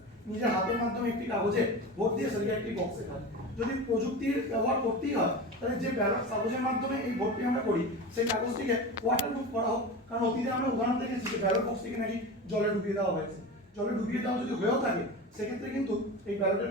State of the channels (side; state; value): both; normal; correlation 0.28